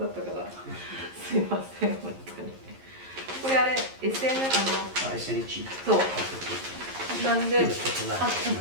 ったから、すいません、本当に。これあれ、SN、そう。なんで、じ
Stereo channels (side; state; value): left; late; 11 ms